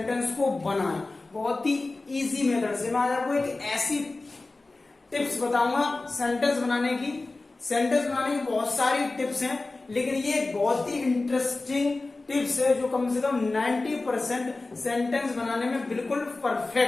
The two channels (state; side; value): quieter; right; 3.3 dB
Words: को बनाएं। बहुत ही इजी मेथड से मैं आज आपको एक ऐसी टिप्स बताऊंगा सेंटेंस बनाने की। सेंटेंस बनाने की बहुत सारी टिप्स हैं, लेकिन ये एक बहुत ही इंटरेस्टिंग टिप्स है जो कम से कम 90% सेंटेंस बनाने में बिल्कुल